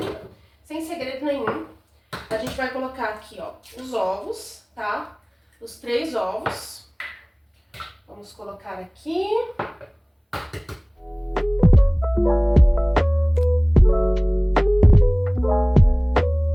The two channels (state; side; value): identical; both; correlation 1.00